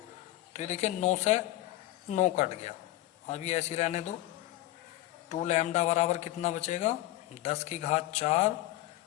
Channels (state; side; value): quieter; right; 15.9 dB